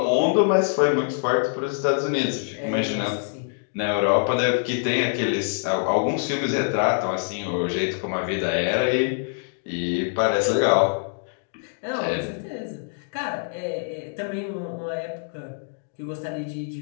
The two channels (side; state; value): right; silent; digital silence